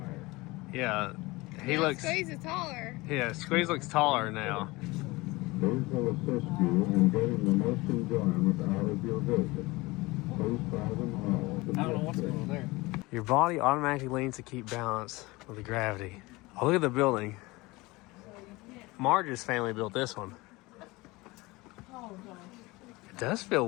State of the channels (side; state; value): right; quieter; 22.2 dB